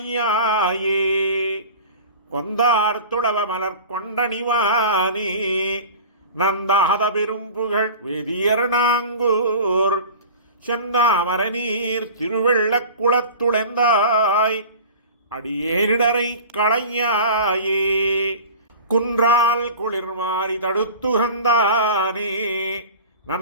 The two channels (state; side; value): inverted; both; correlation -0.37